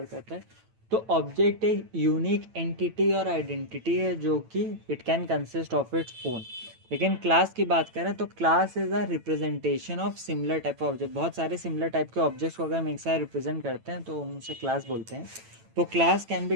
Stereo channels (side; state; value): left; late; 9.0 ms